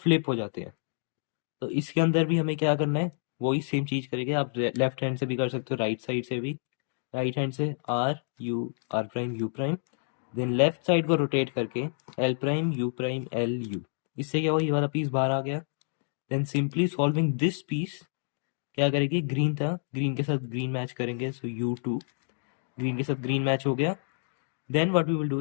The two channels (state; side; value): silent; right; digital silence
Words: हो जाते हैं। तो इसके अंदर भी हमें क्या करना है, वही सेम चीज करेंगे। आप लेफ्ट हैंड से भी कर सकते हो, राइट साइड से भी। राइट हैंड से R U R prime U prime, then left side को रोटेट करके एल यू। इससे क्या हुआ, ये वाला पीस बाहर आ गया। Then simply solving this piece क्या करेंगे, ग्रीन था, ग्रीन के साथ ग्रीन मैच करेंगे, सो यू टू, ग्रीन के साथ ग्रीन मैच हो गया। Then what we will